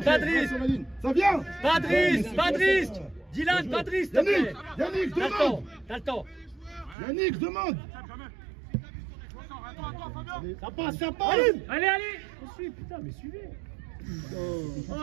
Patrice. Ça vient. Patrice. Dylan, Patrice, s'il te plaît. Yannick, demande. T'as le temps. Yannick, demande. Ça passe. Allez. On suit, putain, mais suivez. Oh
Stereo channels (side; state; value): left; drops out; at 7.0 s